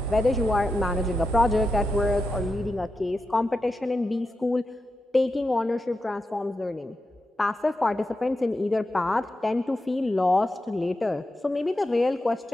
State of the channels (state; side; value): normal; both; correlation 0.88